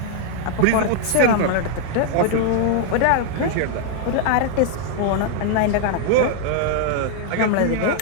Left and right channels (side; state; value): both; different; correlation 0.00